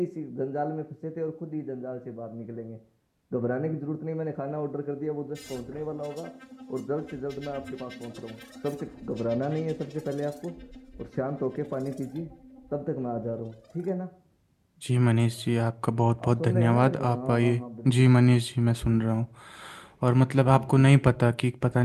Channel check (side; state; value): both; identical; correlation 1.00